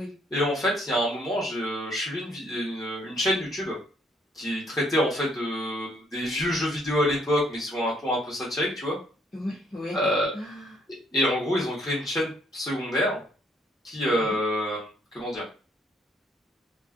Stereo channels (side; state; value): both; normal; correlation 0.67